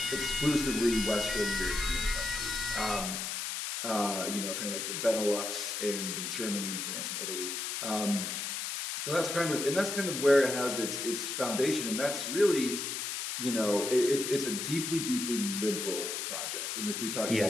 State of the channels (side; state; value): left; noise; hiss, 3 dB below the sound